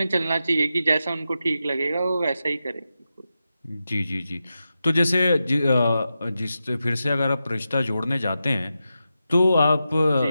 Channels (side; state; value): both; inverted; correlation -0.90